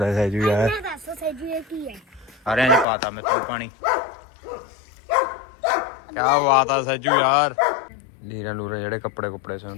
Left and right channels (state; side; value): drops out; right; at 2.9 s